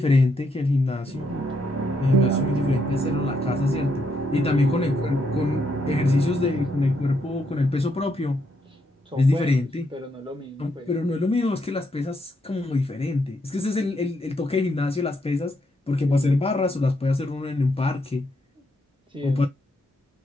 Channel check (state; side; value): normal; both; correlation 0.77